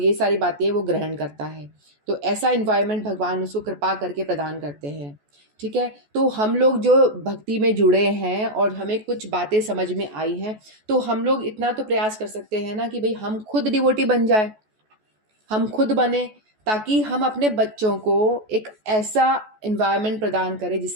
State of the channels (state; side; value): late; left; 14 ms